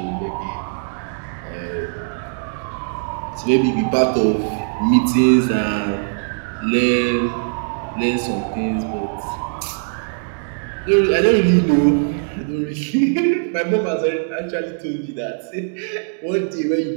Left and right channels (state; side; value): silent; left; digital silence